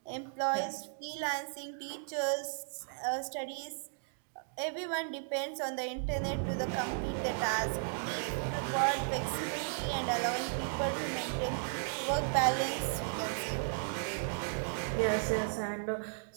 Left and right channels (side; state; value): left; silent; digital silence